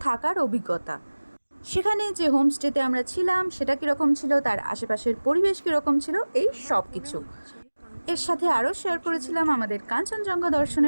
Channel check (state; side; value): inverted; both; correlation -1.00